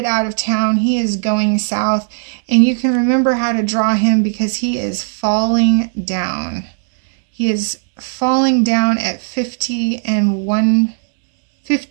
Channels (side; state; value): left; silent; digital silence